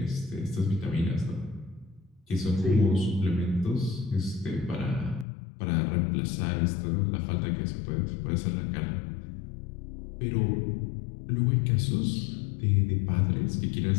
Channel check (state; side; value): drops out; right; at 5.2 s